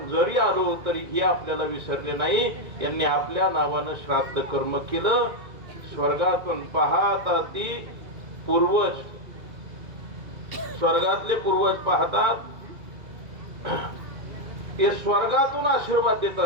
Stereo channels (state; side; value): late; left; 2.4 ms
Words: जरी आलो तरी हे आपल्याला विसरले नाही. यांनी आपल्या नावानं श्राद्ध कर्म केलं. स्वर्गातून पाहतात ती पूर्वज, स्वर्गातले पूर्वज पाहतात ते स्वर्गातून आशीर्वाद देत